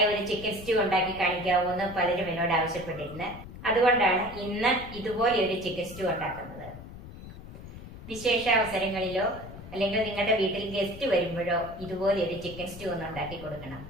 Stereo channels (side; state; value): left; noise; rumble, 14 dB below the sound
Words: ഒരു ചിക്കൻ സ്റ്റൂ ഉണ്ടാക്കി കാണിക്കാവൂ എന്ന് പലരും എന്നോട് ആവശ്യപ്പെട്ടിരുന്നു. അതുകൊണ്ടാണ് ഇന്ന് ഇതുപോലെ ഒരു ചിക്കൻ സ്റ്റൂ ഉണ്ടാക്കുന്നത്. വിശേഷ അവസരങ്ങളിലോ അല്ലെങ്കിൽ നിങ്ങളുടെ വീട്ടിൽ ഗസ്റ്റ് വരുമ്പോഴോ ഇതുപോലെ ഒരു ചിക്കൻ സ്റ്റൂ ഒന്ന് ഉണ്ടാക്കി കൊടുക്കണം.